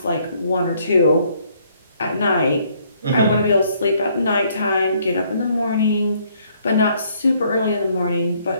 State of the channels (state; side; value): inverted; both; correlation -0.67